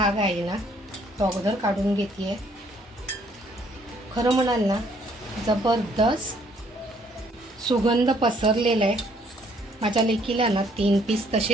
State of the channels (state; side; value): normal; both; correlation 0.65